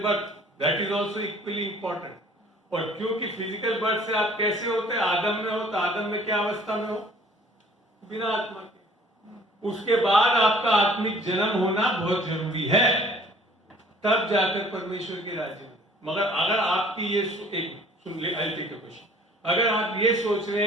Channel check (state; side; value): normal; both; correlation 0.54